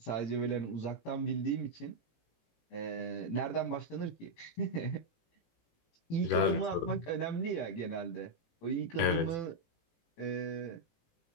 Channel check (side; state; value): right; late; 18 ms